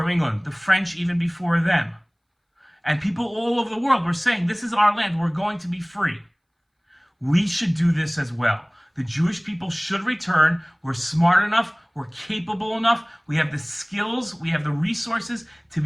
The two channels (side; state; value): both; identical; correlation 1.00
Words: England. The French even before them. And people all over the world were saying, this is our land, we're going to be free. We should do this as well. The Jewish people should return. We're smart enough, we're capable enough, we have the skills, we have the resources to